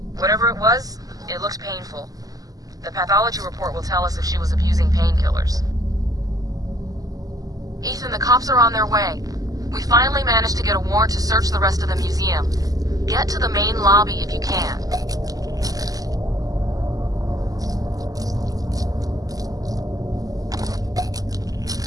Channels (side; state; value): left; late; 0.17 ms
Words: Whatever it was, it looked painful. The pathology report will tell us if she was abusing painkillers. Ethan, the cops are on their way. We finally managed to get a warrant to search the rest of the museum. Get to the main lobby if you can.